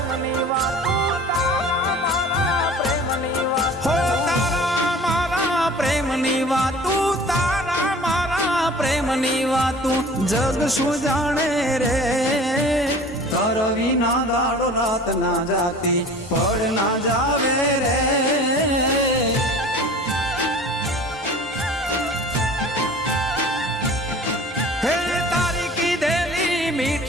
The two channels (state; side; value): normal; both; correlation 0.44